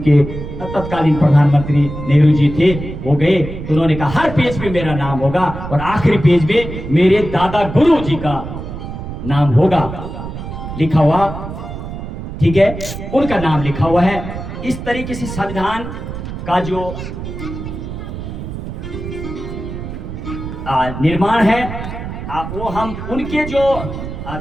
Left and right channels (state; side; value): noise; right; rumble, 8 dB below the sound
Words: तत्कालीन प्रधानमंत्री नेहरू जी थे, वो गए, तो उन्होंने कहा हर पेज पे मेरा नाम होगा और आखिरी पेज में मेरे दादा गुरु जी का नाम होगा लिखा हुआ। ठीक है, उनका नाम लिखा हुआ है। इस तरीके से संविधान का जो निर्माण है, वो हम उनके जो